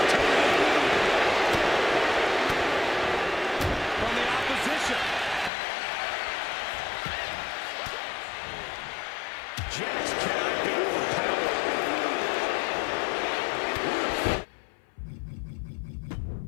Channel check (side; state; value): right; drops out; at 5.5 s